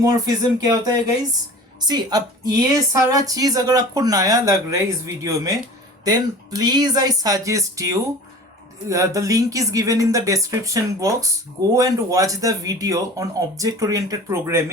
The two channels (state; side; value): normal; both; correlation 0.39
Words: क्या होता है गाइज? सी, अब ये सारा चीज अगर आपको नया लग रहा है इस वीडियो में, then please I suggest you, the link is given in the description box. Go and watch the video on object oriented